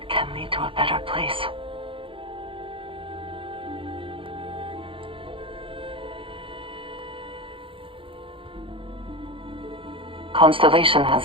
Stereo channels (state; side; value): late; left; 0.25 ms